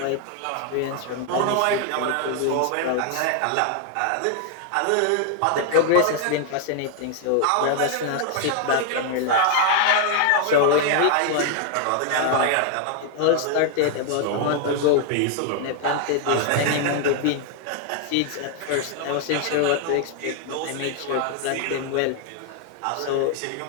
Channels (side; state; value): both; different; correlation 0.00